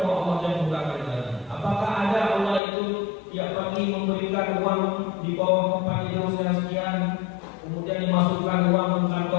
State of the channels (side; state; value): right; drops out; at 2.6 s